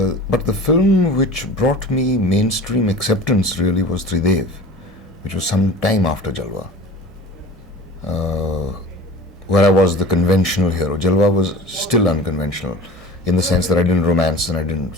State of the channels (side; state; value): both; normal; correlation 0.38